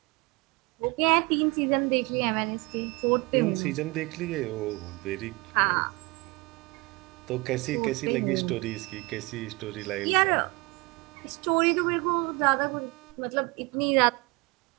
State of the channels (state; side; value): quieter; left; 25.5 dB